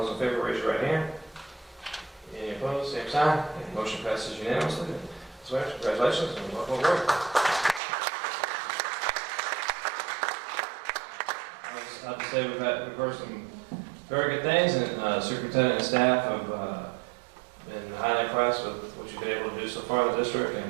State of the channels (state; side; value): drops out; left; at 7.8 s